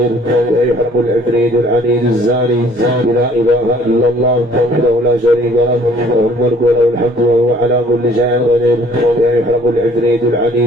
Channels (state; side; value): normal; both; correlation 0.56